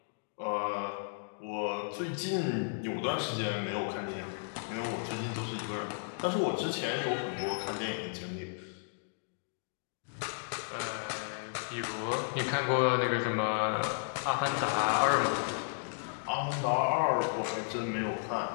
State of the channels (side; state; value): right; silent; digital silence